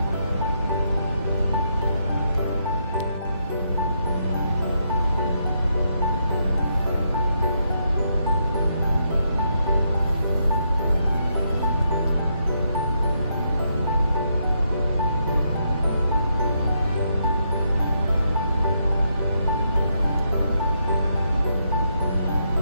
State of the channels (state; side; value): inverted; both; correlation -0.78